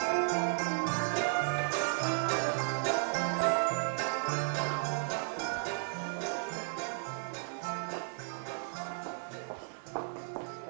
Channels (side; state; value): left; silent; digital silence